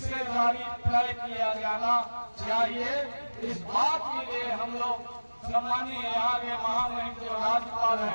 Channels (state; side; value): inverted; both; correlation -1.00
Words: तय किया जाना चाहिए। इस बात के लिए हम लोग सम्मानीय यहाँ के महामहिम जो राज्यपाल